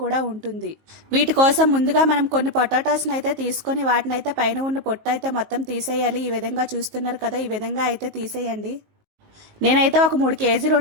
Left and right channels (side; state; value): left; late; 19 ms